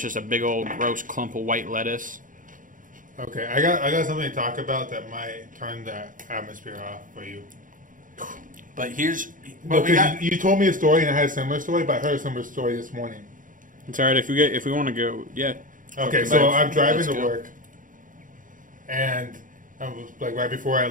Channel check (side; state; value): left; late; 0.39 ms